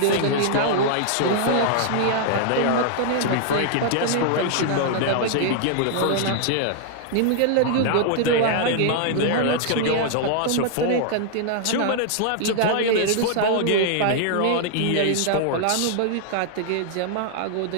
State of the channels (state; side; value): different; both; correlation -0.01